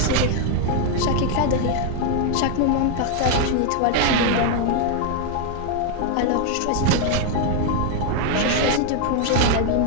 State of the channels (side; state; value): both; different; correlation 0.00